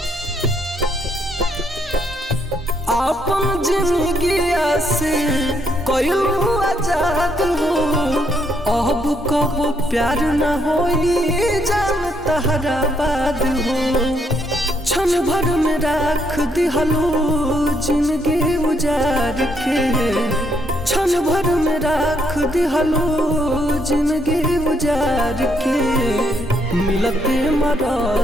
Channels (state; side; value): normal; both; correlation 0.73